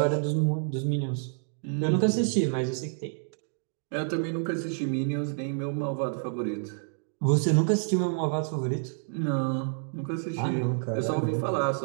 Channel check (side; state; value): left; silent; digital silence